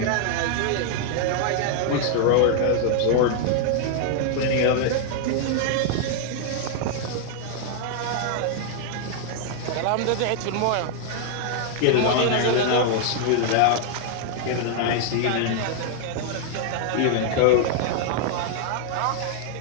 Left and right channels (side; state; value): both; different; correlation 0.00